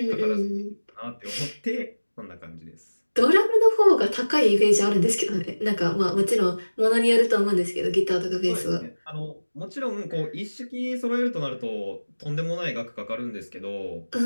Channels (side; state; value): both; inverted; correlation -1.00